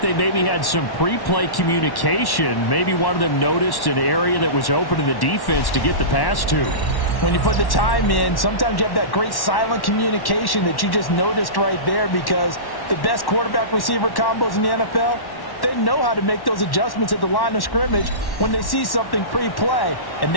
they maybe had some pre-play communication. Maybe one of them noticed an area that was open to the defense to get the pass to. When you put the time in, sometimes you have that great silent communication that you just noticed right there because the best quarterback-receiver combos in the NFL, they know how to make those adjustments at the line of scrimmage when they see something pre-play, and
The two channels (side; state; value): right; late; 1.1 ms